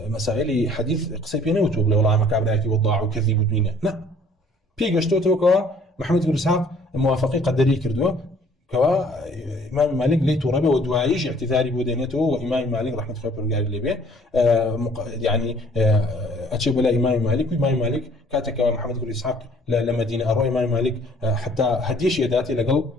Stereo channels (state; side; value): normal; both; correlation 0.57